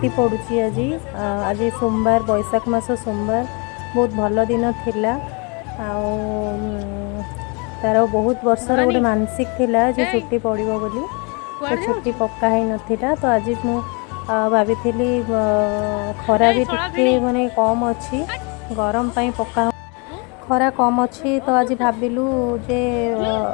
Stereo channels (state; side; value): quieter; right; 32.5 dB